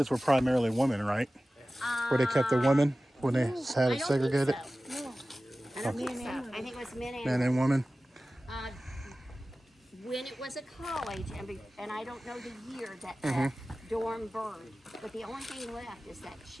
were primarily women, right? Where they kept the women when they had it segregated? No. I don't think so. I think it was men and Men and women? when it was a college, and I don't know the year that the dorm burned, but the only thing left is that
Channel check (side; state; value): both; normal; correlation 0.96